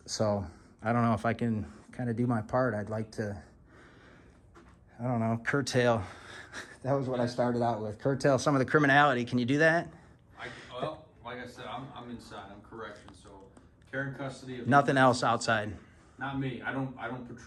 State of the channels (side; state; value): both; identical; correlation 1.00